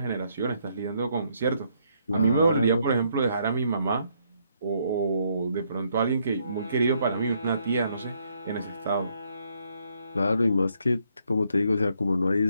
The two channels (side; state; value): both; inverted; correlation -0.72